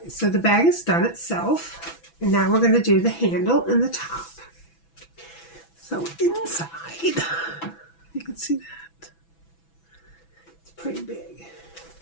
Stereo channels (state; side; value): late; right; 6.0 ms